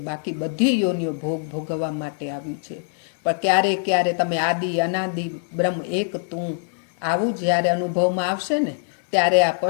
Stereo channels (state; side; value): silent; right; digital silence